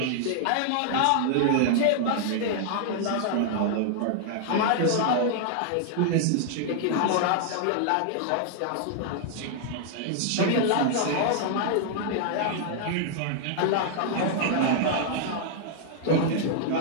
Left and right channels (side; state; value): both; different; correlation -0.01